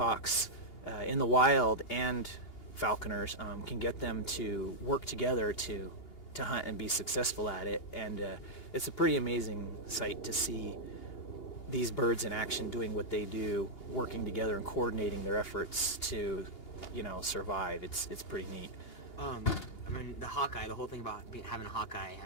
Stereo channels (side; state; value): right; late; 2.8 ms